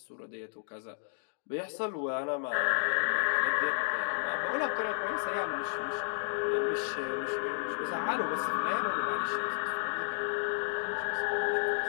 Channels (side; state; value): right; silent; digital silence